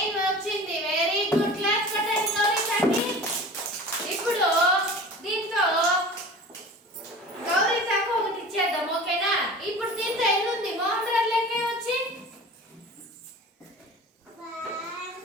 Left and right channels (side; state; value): both; normal; correlation 0.38